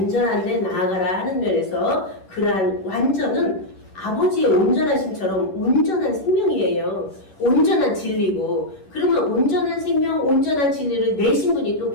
데 나아가라 하는 면에서, 그러한 완전은 아버지의 온전하심처럼 온전한 생명이에요. 온전한 진리고, 그러면 온전한 생명, 온전한 진리를 내신 분이 또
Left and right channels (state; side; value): late; right; 11 ms